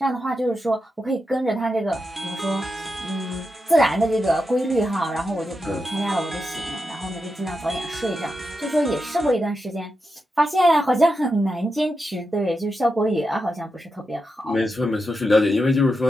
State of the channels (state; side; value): normal; both; correlation 0.87